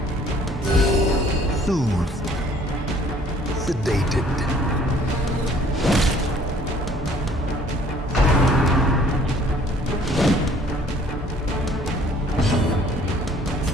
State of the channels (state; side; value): normal; both; correlation 0.57